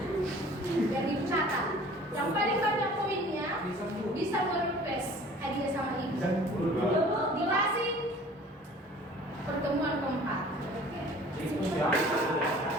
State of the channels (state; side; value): normal; both; correlation 0.48